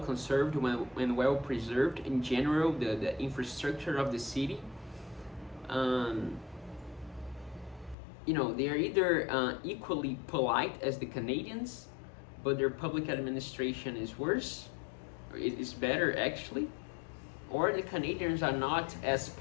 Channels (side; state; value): right; drops out; at 8.0 s